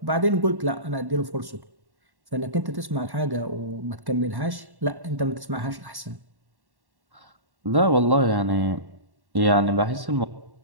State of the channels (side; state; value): left; late; 1.1 ms